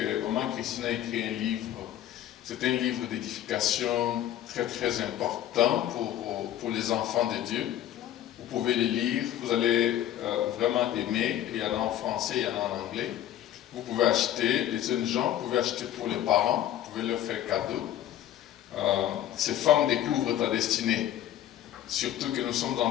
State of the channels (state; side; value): quieter; right; 12.0 dB